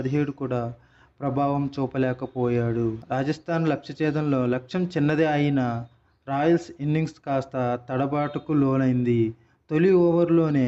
కూడా ప్రభావం చూపలేకపోయాడు. రాజస్థాన్ లక్ష్యఛేదంలో లక్ష్యం చిన్నదే అయినా రాయల్స్ ఇన్నింగ్స్ కాస్త తడబాటుకు లోనైంది. తొలి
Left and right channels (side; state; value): both; identical; correlation 1.00